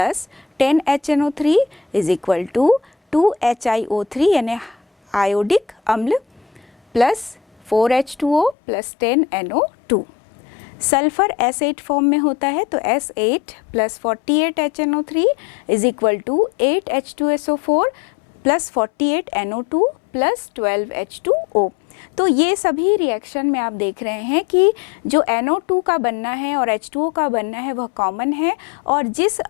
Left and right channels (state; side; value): drops out; right; at 8.6 s